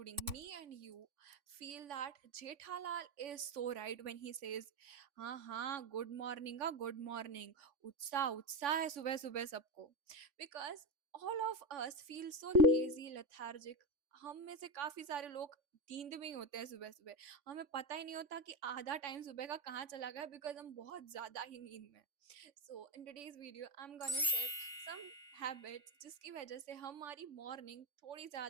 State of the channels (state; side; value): late; left; 3.5 ms